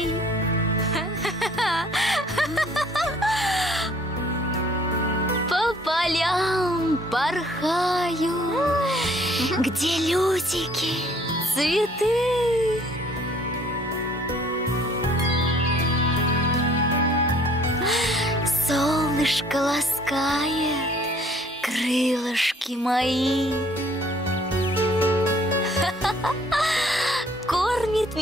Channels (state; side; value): normal; both; correlation 0.58